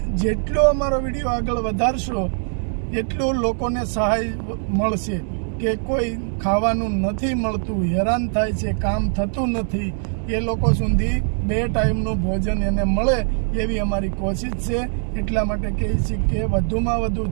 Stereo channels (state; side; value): silent; left; digital silence